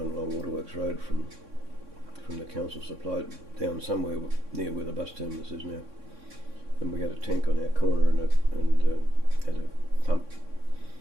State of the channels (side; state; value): left; late; 3.6 ms